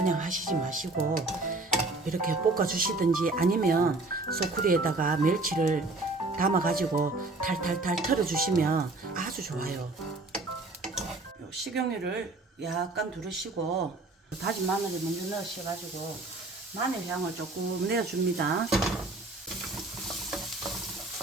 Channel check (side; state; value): left; quieter; 3.2 dB